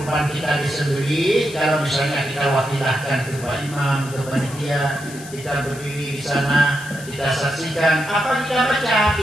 kita disembelih. Kalau misalnya kita wakilahkan ke Pak Imam, ke panitia, kita berdiri di sana, kita saksikan, apa kita baca,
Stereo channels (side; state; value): left; noise; hiss, 16 dB below the sound